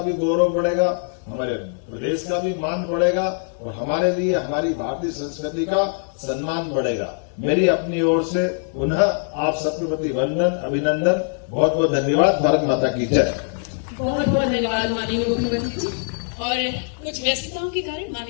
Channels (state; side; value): silent; right; 64 dB below the other